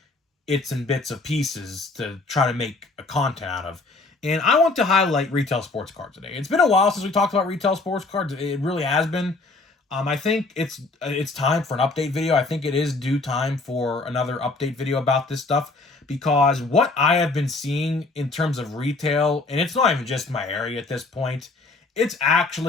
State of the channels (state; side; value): quieter; right; 3.4 dB